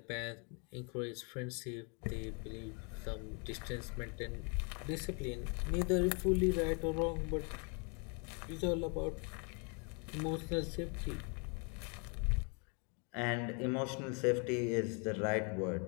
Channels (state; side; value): quieter; right; 36.2 dB